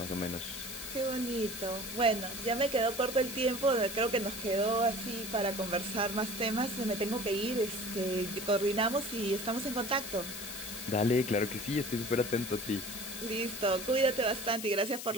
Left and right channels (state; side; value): noise; left; hiss, 8 dB below the sound